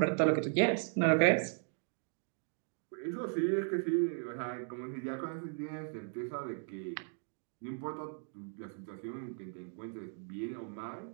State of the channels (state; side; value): silent; left; 53 dB below the other